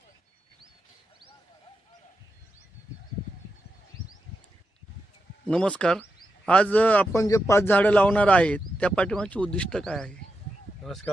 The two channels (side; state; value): both; normal; correlation 0.87